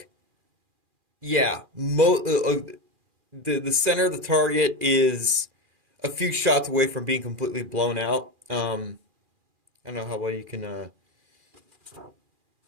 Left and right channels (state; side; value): late; left; 2.4 ms